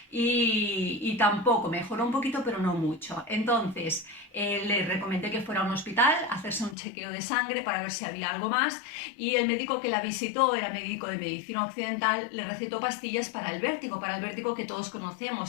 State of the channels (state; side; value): drops out; right; at 6.8 s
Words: y tampoco, mejoró un poquito, pero no mucho. Entonces le recomendé que fuera a un hospital a hacerse un chequeo de sangre para ver si había algo más, y el médico que la visitó era médico de medicina occidental, le recetó pastillas para el vértigo que todos